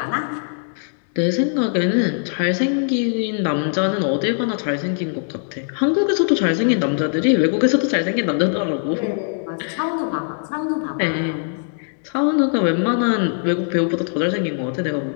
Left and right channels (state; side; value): silent; right; digital silence